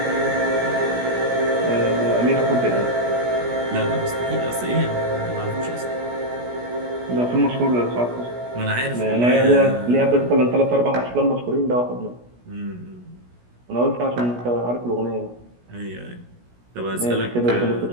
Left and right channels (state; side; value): late; left; 17 ms